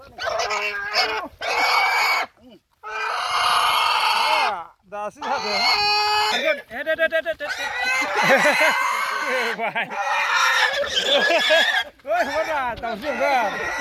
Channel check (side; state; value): both; identical; correlation 1.00